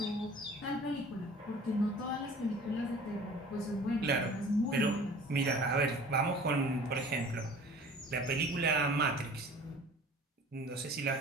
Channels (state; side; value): normal; both; correlation 0.45